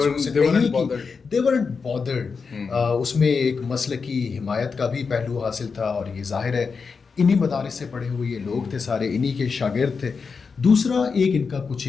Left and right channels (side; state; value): right; quieter; 5.2 dB